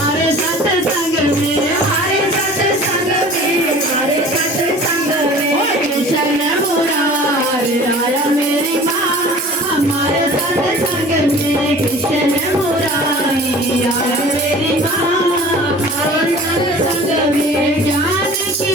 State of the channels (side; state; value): both; normal; correlation 0.44